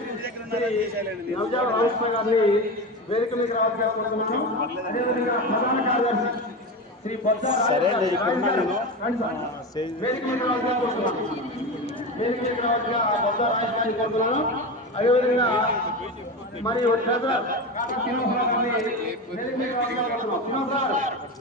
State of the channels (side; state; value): both; normal; correlation 0.22